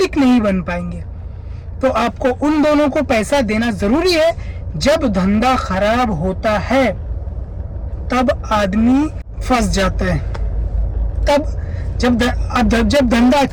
नहीं बन पाएंगे। तो आपको उन दोनों को पैसा देना जरूरी है। जब धंधा खराब होता है तब आदमी फंस जाता है, तब जब धंधा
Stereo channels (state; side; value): identical; both; correlation 1.00